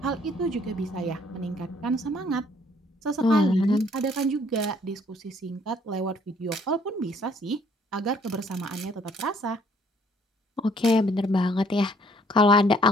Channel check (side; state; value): both; normal; correlation 0.62